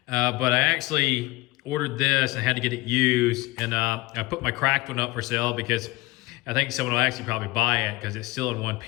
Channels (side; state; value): right; quieter; 21.2 dB